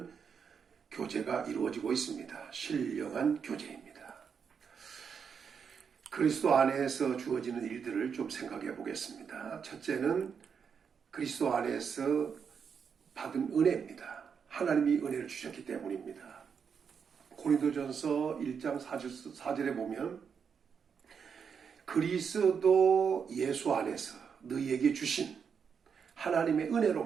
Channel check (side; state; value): left; quieter; 6.6 dB